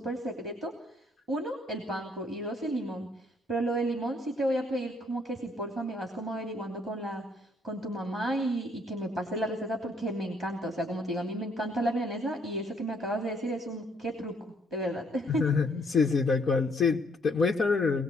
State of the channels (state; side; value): normal; both; correlation 0.67